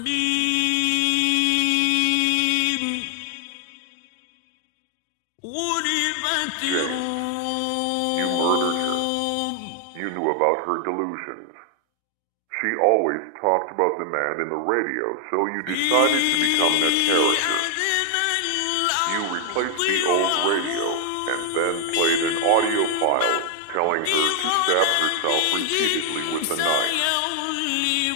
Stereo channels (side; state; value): both; different; correlation 0.00